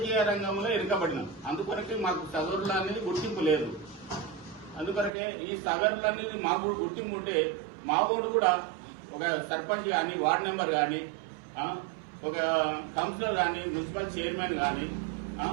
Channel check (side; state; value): left; drops out; at 5.1 s